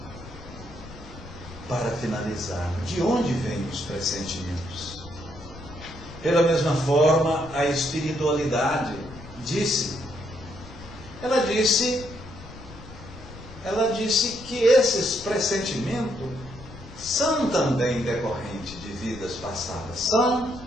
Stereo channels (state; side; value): noise; left; rumble, 16 dB below the sound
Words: Para finalizar, de onde vêm os pressentimentos? Pela mesma forma, a espiritualidade ela disse que esses pressentimentos são também decorrentes de vidas passadas, são